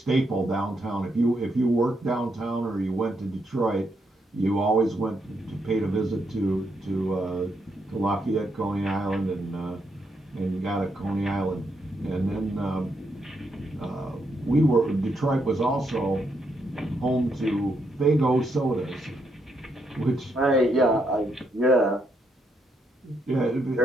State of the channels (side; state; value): both; normal; correlation 0.78